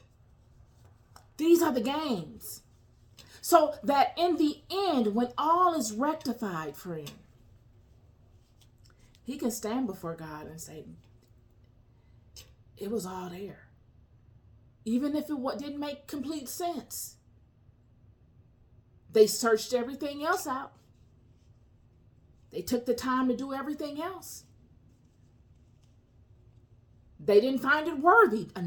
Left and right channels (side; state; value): both; identical; correlation 1.00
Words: These are the games. So that in the end, when all is rectified, friend, he can stand before God and say, it was all there. Even if it didn't make complete sense. They searched everything else out. They took the time to do everything else. They didn't find it worthy